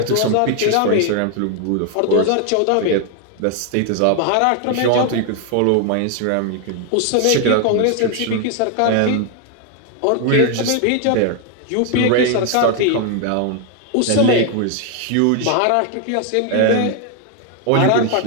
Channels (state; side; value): different; both; correlation 0.01